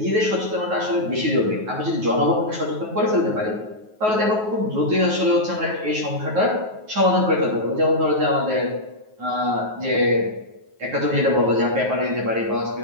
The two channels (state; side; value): late; left; 9.3 ms